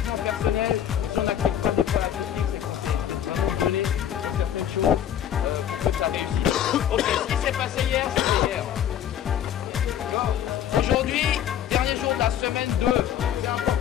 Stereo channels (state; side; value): quieter; right; 10.1 dB